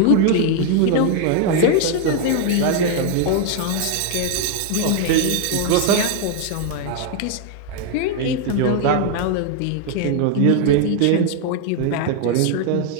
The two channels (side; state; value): both; different; correlation 0.01